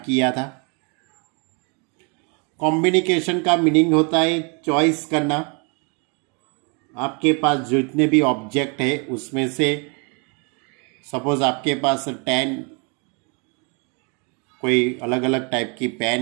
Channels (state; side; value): quieter; left; 34.3 dB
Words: किया था। कॉम्बिनेशन का मीनिंग होता है चॉइस करना। आपके पास जितने भी ऑब्जेक्ट है उसमें से सपोज आपके पास 10 कोई अलग अलग टाइप की पेन